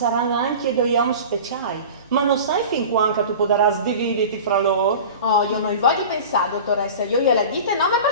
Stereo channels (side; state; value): both; inverted; correlation -0.35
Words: anche due uomini speciali, ma non sai fin quando tu potrai sdividerti fra loro? Oh, io non voglio pensare, dottoressa, io gliela dite nome